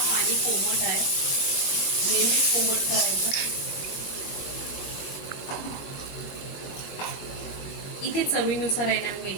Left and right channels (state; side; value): late; right; 20 ms